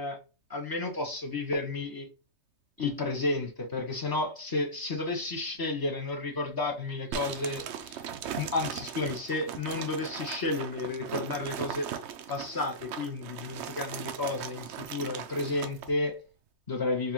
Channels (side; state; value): left; late; 3.2 ms